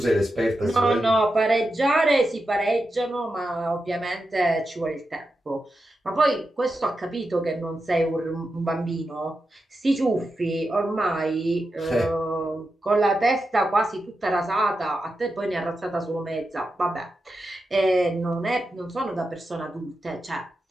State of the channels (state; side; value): normal; both; correlation 0.89